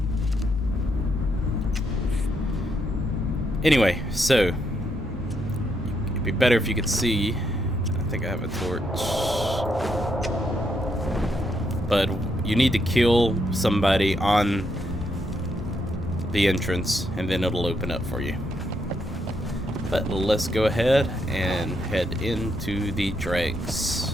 Anyway, so it'd be better if you could see. I think I have a torch. But you need to kill somebody on the entrance and then it'll open up for you. But let's go ahead and head into the Dregs.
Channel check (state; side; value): normal; both; correlation 0.78